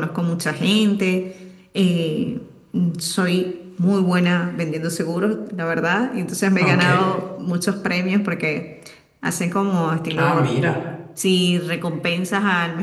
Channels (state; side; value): identical; both; correlation 1.00